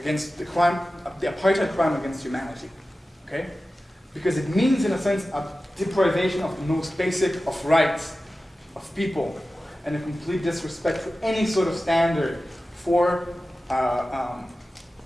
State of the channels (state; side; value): normal; both; correlation 0.95